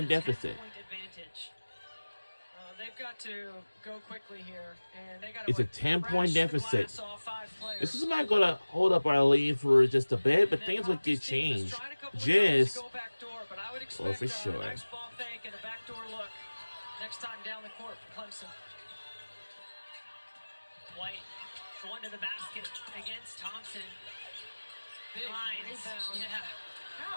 deficit. They've got to go quickly here, and they got It's a 10-point deficit. This is not going to hold up our lead for just a bit, but things would get changed. Just, oh, for sure. Nice ball fake and a backdoor look. Next time down the court for Clemson. White going to the basket against Thompson. Big Hines. rebound. Yeah.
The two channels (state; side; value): inverted; both; correlation -1.00